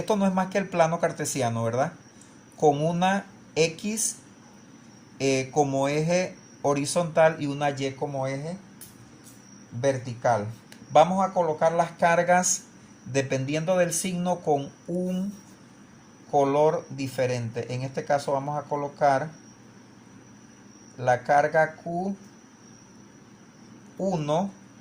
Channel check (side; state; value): both; identical; correlation 1.00